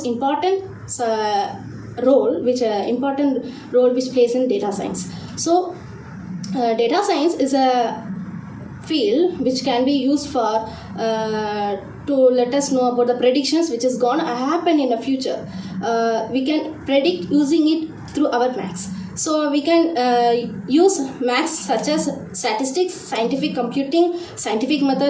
important role which plays in data science. So data science is a field which can be used for to let us know about the predictions which is going to happen in the future. We can predict using it through our maths. So we can use maths such as statistics, scientific computing, scientific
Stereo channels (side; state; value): both; identical; correlation 1.00